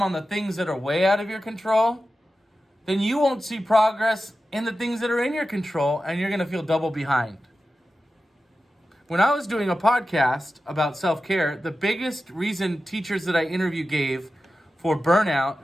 on the things that are way out of your control, then you won't see progress in the things that are in your control, and you're going to feel double behind. When I was doing a podcast about self-care, the biggest reason teachers that I interview gave for burnout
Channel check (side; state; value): both; normal; correlation 0.93